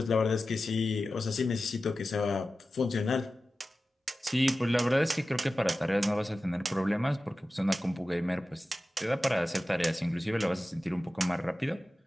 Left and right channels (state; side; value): normal; both; correlation 0.94